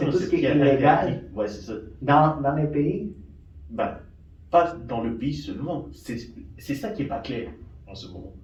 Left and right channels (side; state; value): both; identical; correlation 1.00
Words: tout ce qui est illégal. Ouais, c'est ça. Dans les pays? Pas dans le pays seulement. C'est ça qui n'est pas clair en ce moment.